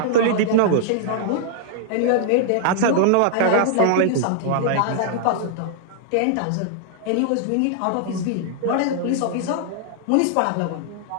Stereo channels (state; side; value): different; both; correlation -0.01